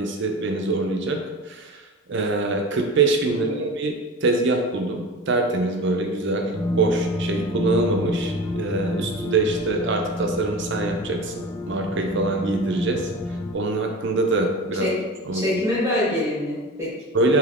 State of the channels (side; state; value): both; normal; correlation 0.33